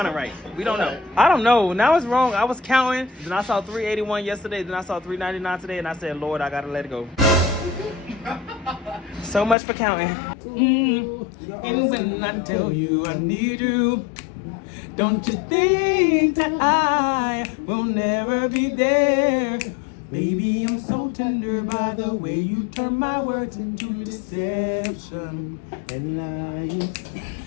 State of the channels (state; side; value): drops out; right; at 9.6 s